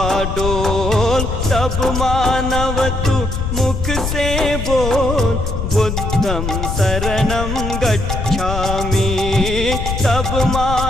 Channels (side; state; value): left; noise; rumble, 3 dB below the sound